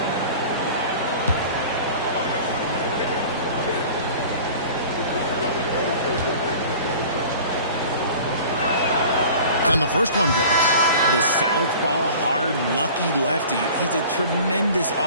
And the first one drops. The southpaw, hard, lucky lefty. He's a tremendous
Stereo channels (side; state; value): both; inverted; correlation -0.43